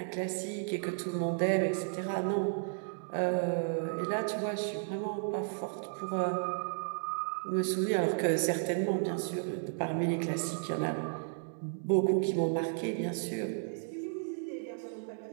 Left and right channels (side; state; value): left; silent; digital silence